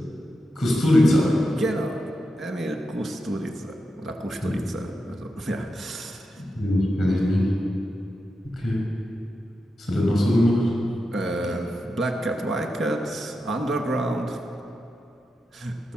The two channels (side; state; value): both; normal; correlation 0.89